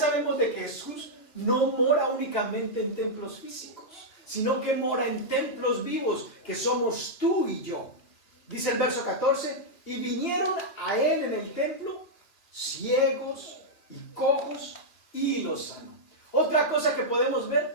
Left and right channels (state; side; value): late; right; 3.0 ms